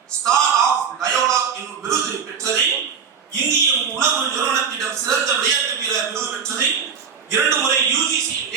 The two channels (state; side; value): quieter; left; 6.5 dB